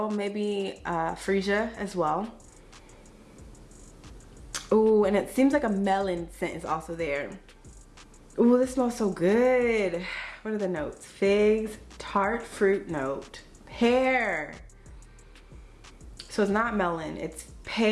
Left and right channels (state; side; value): identical; both; correlation 1.00